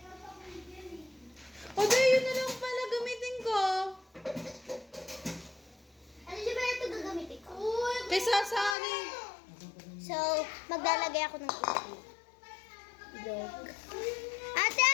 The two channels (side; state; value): right; drops out; at 8.8 s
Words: O, di, yun na lang pala gamitin ko. Ano siya ba ito gagamitin ko? Kay Sasari. So, maglalagay ako ng itlog. Ate,